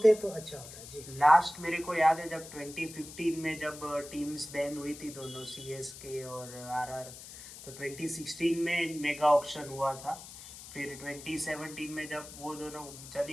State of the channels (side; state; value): left; noise; hiss, 14 dB below the sound